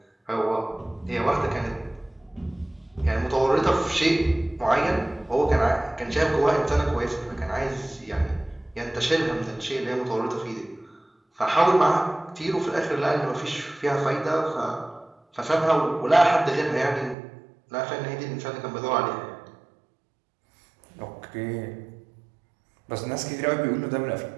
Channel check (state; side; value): drops out; left; at 17.2 s